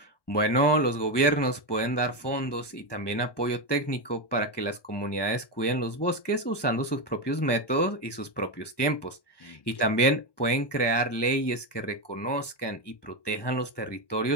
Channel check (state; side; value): late; right; 1.2 ms